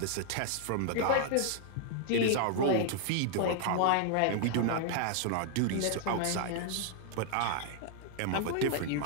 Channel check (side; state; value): both; different; correlation 0.00